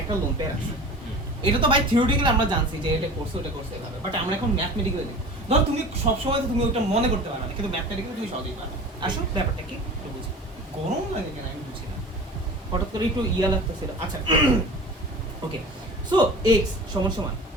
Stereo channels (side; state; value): both; normal; correlation 0.38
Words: একটা লোন পেয়ার আছে, এটা তো ভাই থিওরিটিক্যালি আমরা জানছি যে এটা করছে ওটা করছে এভাবে, বাট আমরা এখন ম্যাথমেটিক্যালি দেখি। ধরো তুমি সবসময় তো তুমি ওটা মনে করতে পারবে না, কিন্তু ম্যাথমেটিক্যালি তুমি সহজেই পারবে। আসলে ব্যাপারটা কি একটু বুঝি, গরম লাগে কেন আমি বুঝি না, হঠাৎ করে একটু ইয়া লাগতেছিল। আচ্ছা ওকে, সো এক্স সমান সমান